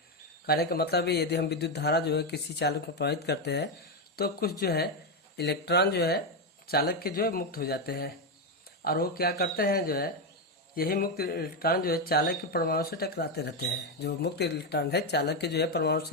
कहने का मतलब है यदि हम विद्युत धारा जो है किसी चालक में प्रवाहित करते हैं तो कुछ जो है इलेक्ट्रॉन जो है चालक के जो है मुक्त हो जाते हैं और वो क्या करते हैं जो है यही मुक्त इलेक्ट्रॉन जो है चालक के परमाणु से टकराते रहते हैं। जो मुक्त इलेक्ट्रॉन है चालक के जो है परमाणु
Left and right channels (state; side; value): normal; both; correlation 0.07